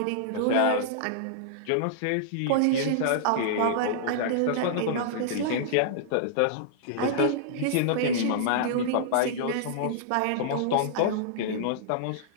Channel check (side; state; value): both; different; correlation -0.02